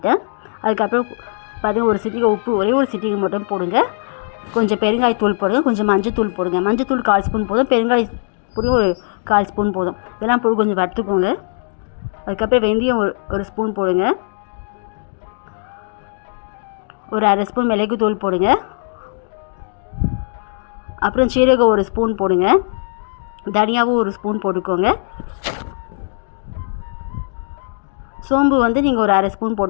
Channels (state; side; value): silent; right; digital silence